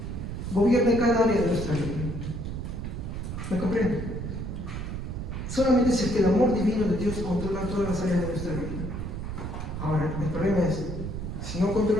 gobierne cada área de nuestra vida. ¿Me comprende? Solamente si es que el amor divino de Dios controla todas las áreas de nuestra vida. Ahora, el problema es, si no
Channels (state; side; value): noise; right; rumble, 5 dB below the sound